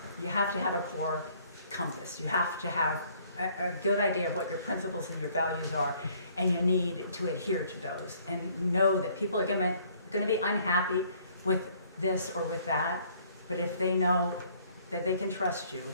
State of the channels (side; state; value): both; inverted; correlation -0.61